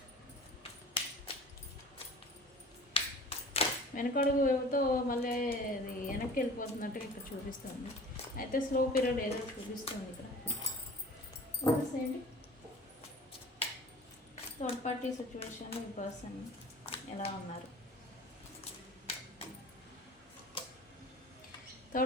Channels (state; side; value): normal; both; correlation 0.43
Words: వెనకడుగుతో మళ్ళీ అది వెనక్కి వెళ్ళిపోతున్నట్టుగా ఇక్కడ చూపిస్తుంది. అయితే స్లో పీరియడ్ ఏదో చూపిస్తుంది ఇక్కడ. ఏంటి థర్డ్ పార్టీ సిచ్యువేషన్, ఈ పర్సన్ ఎలా ఉన్నారు.